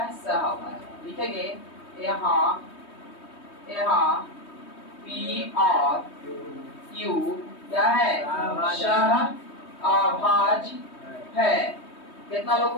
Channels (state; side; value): late; right; 3.2 ms